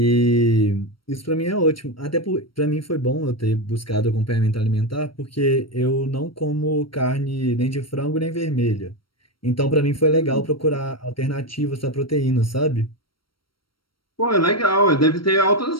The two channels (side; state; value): right; late; 0.74 ms